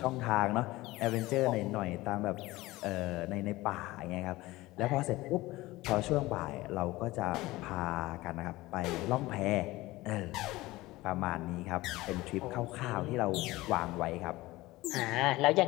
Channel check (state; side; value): quieter; right; 19.1 dB